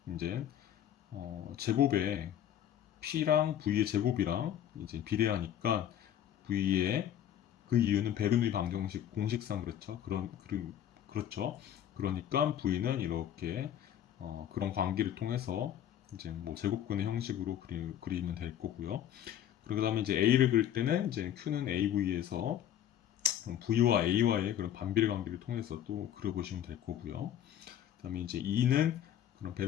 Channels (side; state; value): right; quieter; 10.6 dB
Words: 이제 제곱에 P랑 V의 제곱이랑 이제 비례하니까 V의 그 이유는 베르누이 방정식 공식상 그렇죠. 그렇죠. 그러니까 V는 이렇게 그런 관계를 통해서 이제 뭐 제곱근의 형식으로 그리면 될 거고요. 그 다음에 이제 A를 그릴 때는 이제 Q는 AV에서 V와 A와의 그런 반비례 관계를 통해서 또 그려보시면 될 거고요. 그 다음에 이제 E는 그런